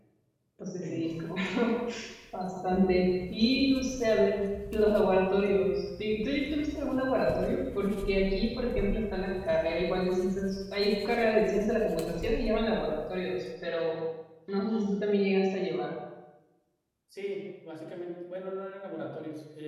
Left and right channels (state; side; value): identical; both; correlation 1.00